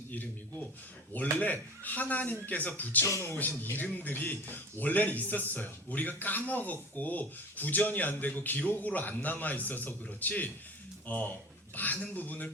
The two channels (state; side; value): normal; both; correlation 0.39